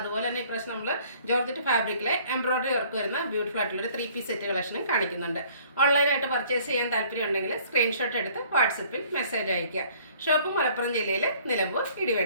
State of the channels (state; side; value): inverted; both; correlation -0.56